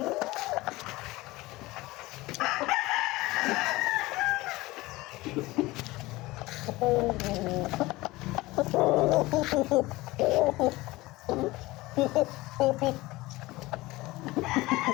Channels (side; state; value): right; quieter; 20.1 dB